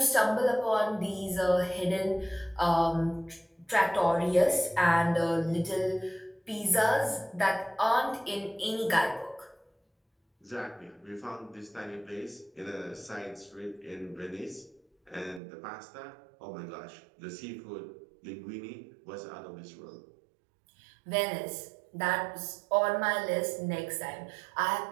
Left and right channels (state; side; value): drops out; left; at 15.4 s